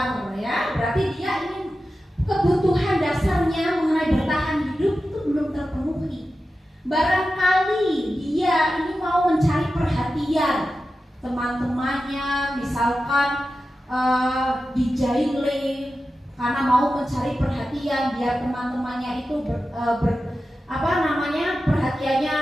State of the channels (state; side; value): normal; both; correlation 0.93